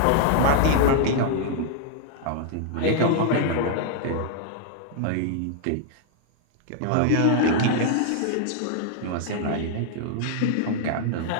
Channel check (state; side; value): different; both; correlation 0.00